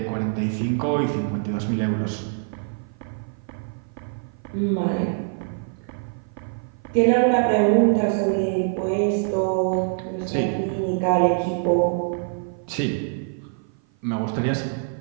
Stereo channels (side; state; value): left; silent; 55 dB below the other